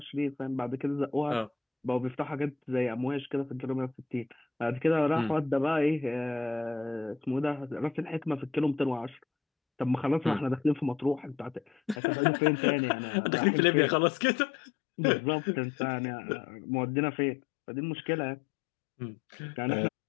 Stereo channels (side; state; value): right; drops out; at 12.0 s